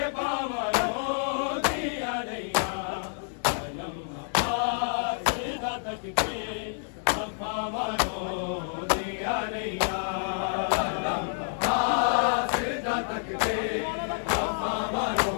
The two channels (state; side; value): silent; right; digital silence